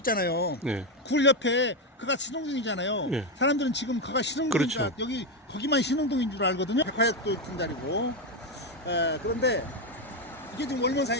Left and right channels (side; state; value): both; normal; correlation 0.08